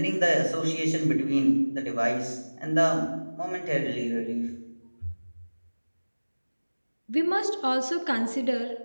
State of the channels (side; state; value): both; inverted; correlation -1.00